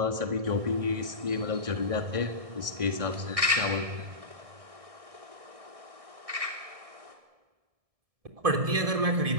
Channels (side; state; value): left; late; 1.6 ms